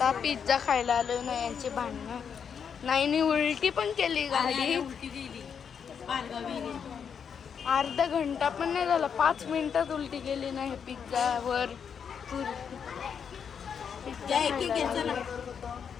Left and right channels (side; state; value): right; quieter; 7.1 dB